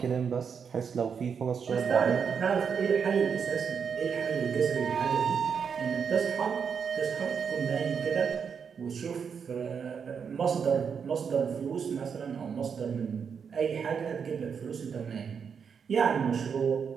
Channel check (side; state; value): left; quieter; 6.6 dB